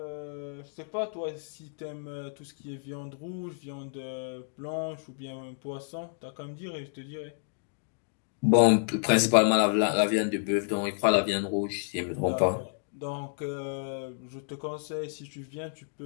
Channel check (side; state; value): right; silent; digital silence